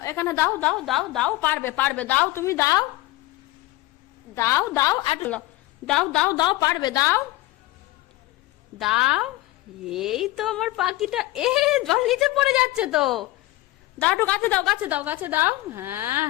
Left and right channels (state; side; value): quieter; right; 18.5 dB